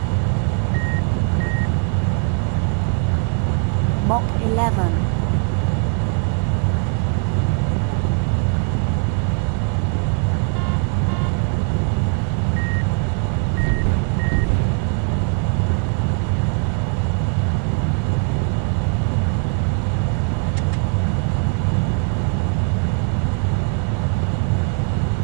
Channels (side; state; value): left; quieter; 38.6 dB